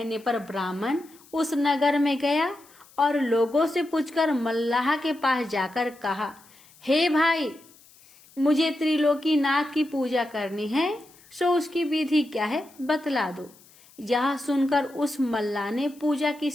पर ब्राह्मण उस नगर में गया और लोगों से पूछकर मल्लाह के पास जाकर कहा, हे भाई मुझे त्रिलोकीनाथ की पूजा करनी है, सो उसकी विधि क्या है बतला दो। यह सुनकर उस मल्लाह ने पूजा की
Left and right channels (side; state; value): left; noise; hiss, 26 dB below the sound